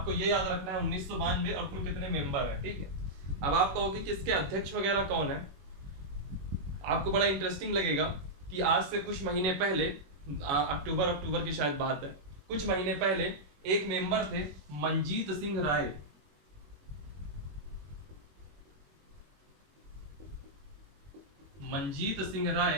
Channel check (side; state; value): left; late; 21 ms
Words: ये याद रखना है 1992 और कुल कितने मेंबर हैं। ठीक है। अब आप कहोगे कि इसके अध्यक्ष वगैरह कौन है, आपको बड़ा इंटरेस्टिंग लगेगा कि आज से कुछ महीने पहले, अक्टूबर की शायद बात है, कुछ महीने पहले एक मेंबर थे मंजीत सिंह राय। मंजीत सिंह राय